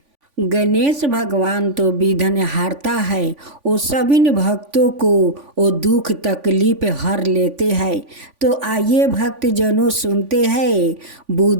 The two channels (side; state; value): left; late; 3.5 ms